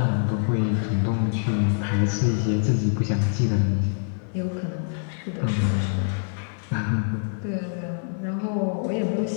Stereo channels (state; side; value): silent; right; 62 dB below the other